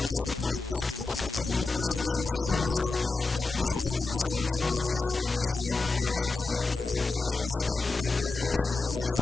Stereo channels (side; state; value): right; quieter; 3.7 dB